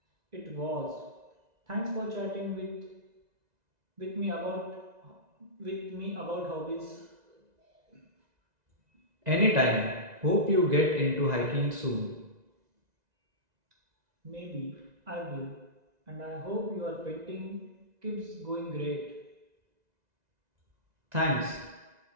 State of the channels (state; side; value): late; left; 2.0 ms